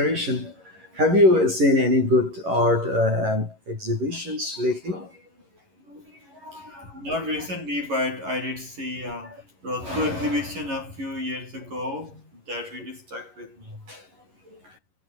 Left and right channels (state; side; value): late; left; 11 ms